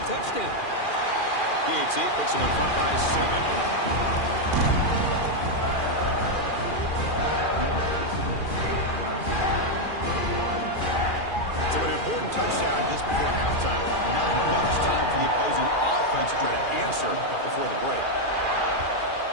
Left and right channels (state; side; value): late; right; 2.4 ms